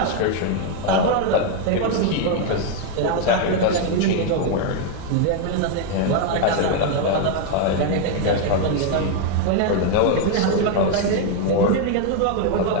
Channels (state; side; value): different; both; correlation 0.00